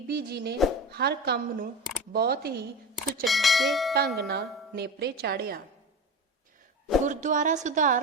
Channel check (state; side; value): normal; both; correlation 0.27